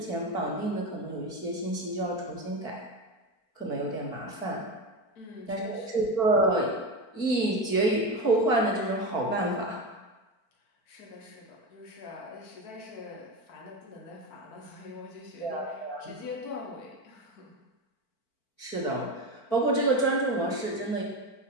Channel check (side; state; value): right; late; 4.5 ms